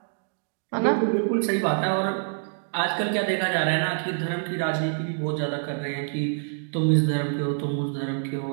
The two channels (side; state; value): left; silent; digital silence